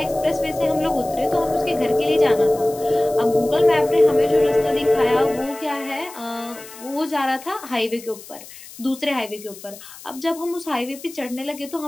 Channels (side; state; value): left; noise; hiss, 17 dB below the sound